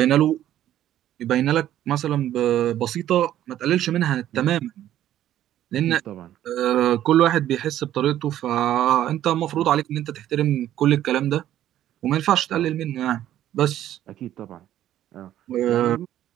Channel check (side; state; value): left; quieter; 12.2 dB